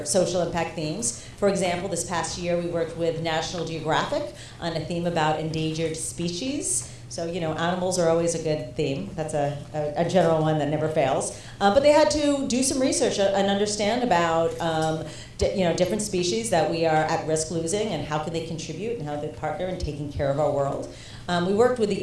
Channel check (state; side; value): identical; both; correlation 1.00